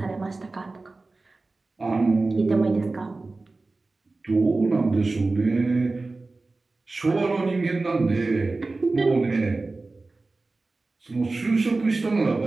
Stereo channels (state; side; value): quieter; left; 3.4 dB